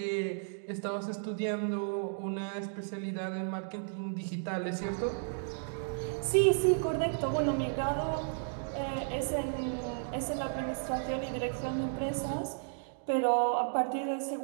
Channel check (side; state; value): left; silent; digital silence